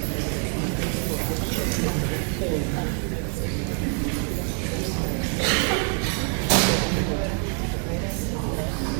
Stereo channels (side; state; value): left; quieter; 38.6 dB